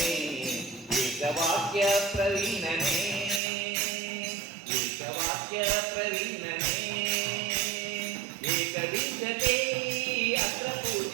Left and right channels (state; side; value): drops out; left; at 3.4 s